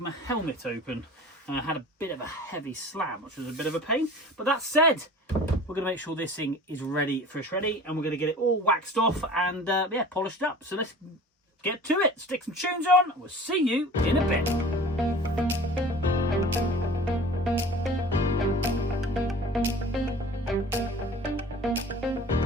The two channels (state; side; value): normal; both; correlation 0.42